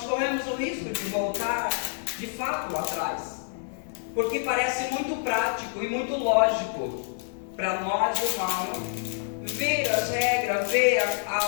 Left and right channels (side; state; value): right; silent; 59 dB below the other